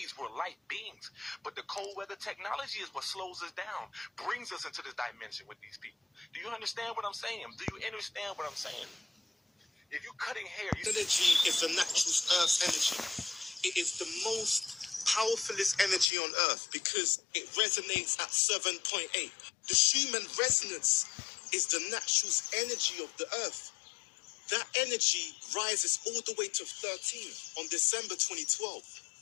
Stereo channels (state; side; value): drops out; right; at 16.1 s